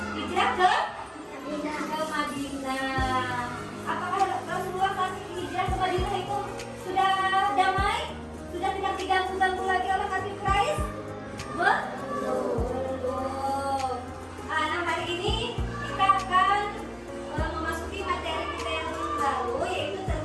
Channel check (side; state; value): both; identical; correlation 1.00